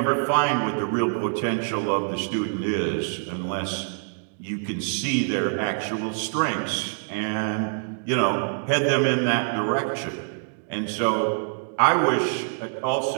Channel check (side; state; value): left; silent; digital silence